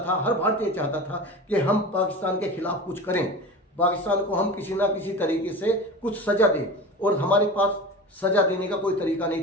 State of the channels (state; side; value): normal; both; correlation 0.32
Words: था, हर भारतीय चाहता था कि हम पाकिस्तान के खिलाफ कुछ करें, पाकिस्तान को हम किसी ना किसी तरीके से कुछ सजा दें। और हमारे पास सजा देने का कोई तरीका